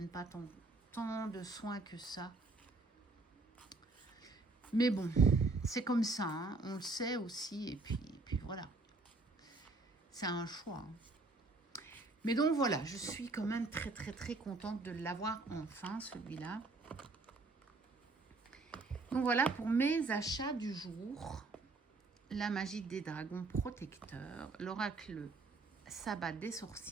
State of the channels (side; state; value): left; quieter; 3.4 dB